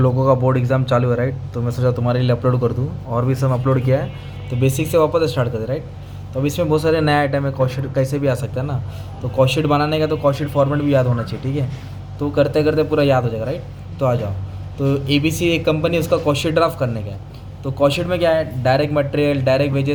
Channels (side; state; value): both; identical; correlation 1.00